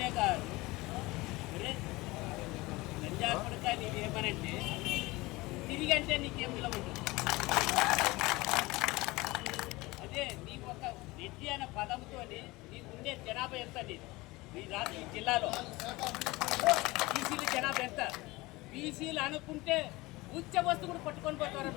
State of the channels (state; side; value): quieter; right; 21.4 dB